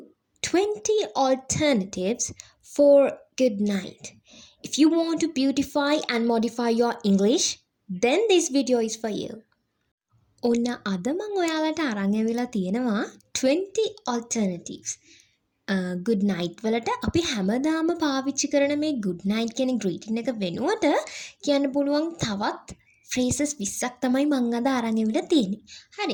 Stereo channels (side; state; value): both; identical; correlation 1.00